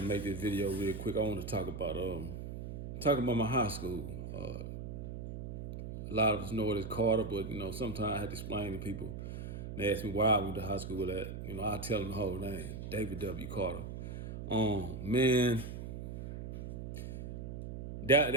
make this video real quick. I want to talk about my high school. A lot of us know it as Carter, but sometimes I have to explain to people. They ask me why I went to high school at. I tell them the whole name, David W. Carter. Man,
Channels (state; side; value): noise; right; hum, 7 dB below the sound